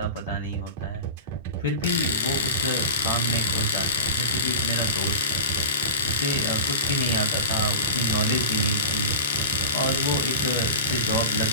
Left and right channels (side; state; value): both; inverted; correlation -0.32